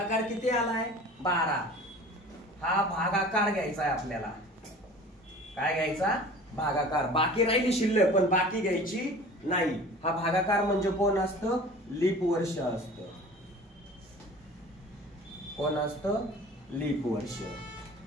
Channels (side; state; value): both; normal; correlation 0.42